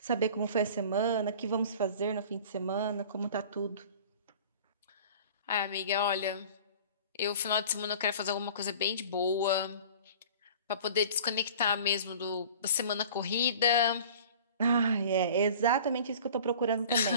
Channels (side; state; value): both; inverted; correlation -0.43